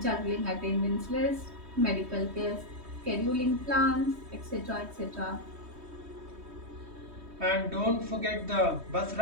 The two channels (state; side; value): late; left; 3.2 ms